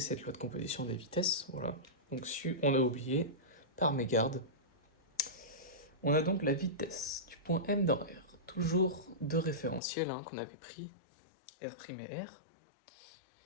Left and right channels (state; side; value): drops out; right; at 9.8 s